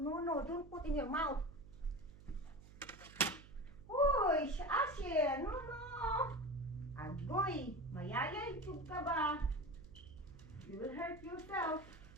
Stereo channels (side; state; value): right; noise; hum, 19 dB below the sound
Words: No, don't put in your mouth. Uy, Asher, no. Agoy, mayayay tug ka ba? You will hurt yourself.